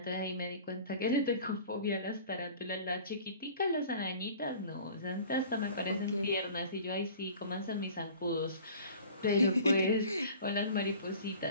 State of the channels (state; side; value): inverted; both; correlation -0.45